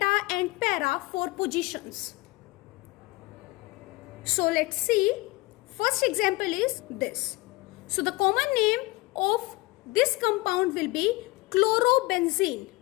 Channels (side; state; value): right; quieter; 22.0 dB